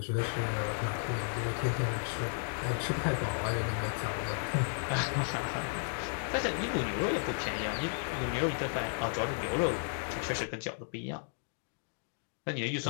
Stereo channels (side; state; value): right; silent; digital silence